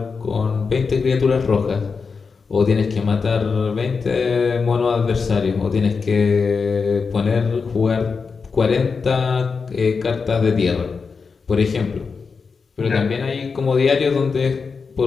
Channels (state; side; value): quieter; right; 5.1 dB